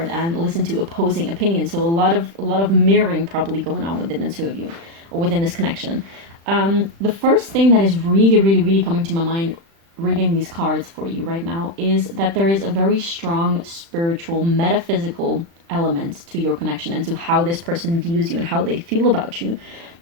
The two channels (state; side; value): late; left; 36 ms